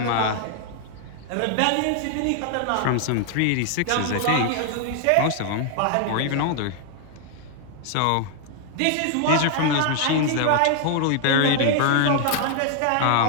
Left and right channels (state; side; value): different; both; correlation 0.00